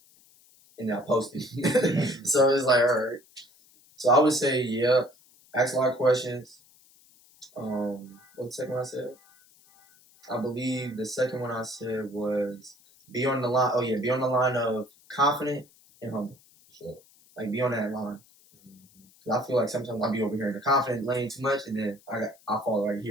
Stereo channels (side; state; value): left; noise; hiss, 29 dB below the sound